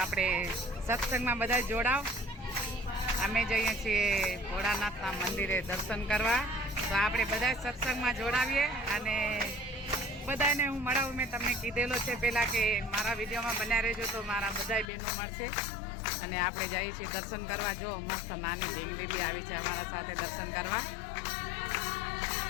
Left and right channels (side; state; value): right; drops out; at 14.9 s